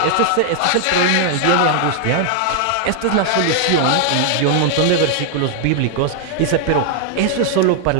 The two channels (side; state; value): both; different; correlation 0.00